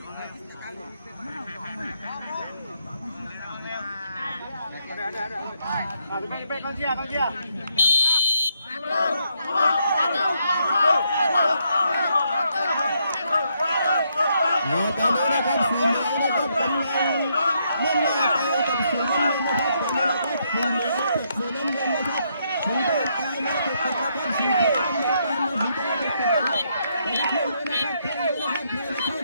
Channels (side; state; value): both; inverted; correlation -0.76